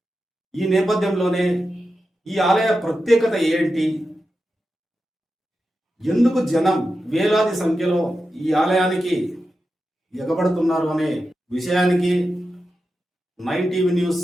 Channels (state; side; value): normal; both; correlation 0.90